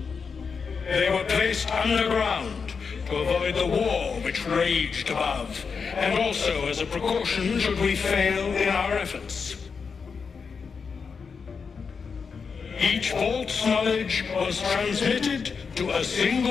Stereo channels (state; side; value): quieter; right; 5.6 dB